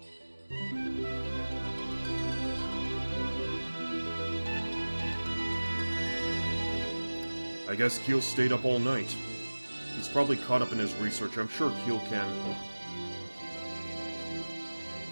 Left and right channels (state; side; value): inverted; both; correlation -1.00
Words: I guess Keele stayed up all night. He's probably caught up in his research. I'm sure Keele can...